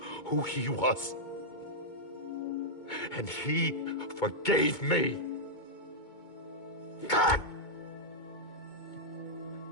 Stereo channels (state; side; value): late; right; 2.2 ms